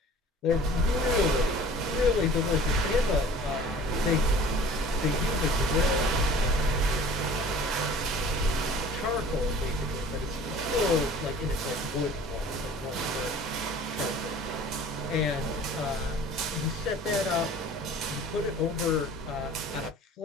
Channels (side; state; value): both; normal; correlation 0.46